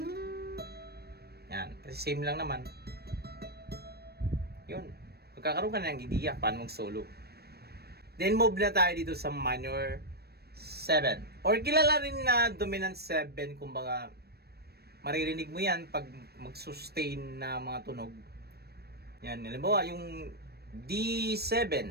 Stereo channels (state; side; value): late; left; 0.47 ms